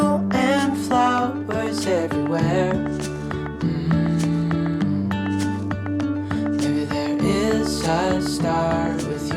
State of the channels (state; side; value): identical; both; correlation 1.00